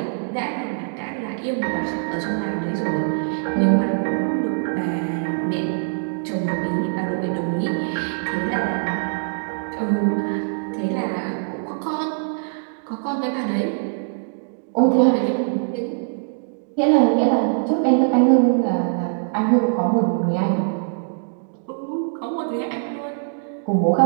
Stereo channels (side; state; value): left; silent; digital silence